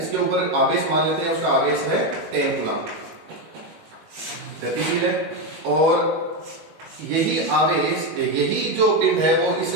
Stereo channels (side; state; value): left; late; 19 ms